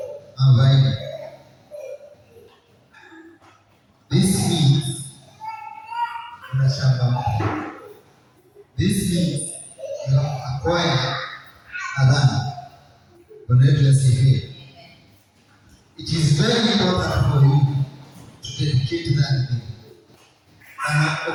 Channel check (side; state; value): both; identical; correlation 1.00